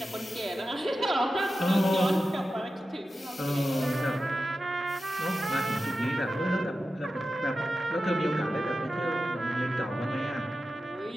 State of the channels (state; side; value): normal; both; correlation 0.92